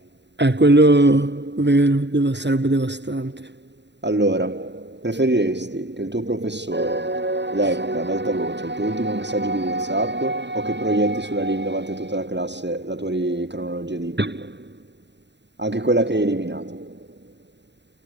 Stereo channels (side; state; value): left; late; 0.51 ms